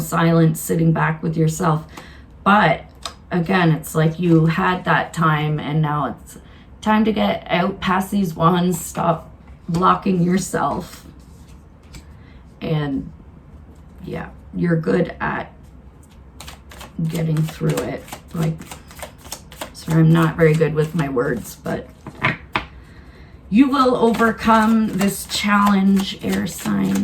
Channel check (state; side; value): identical; both; correlation 1.00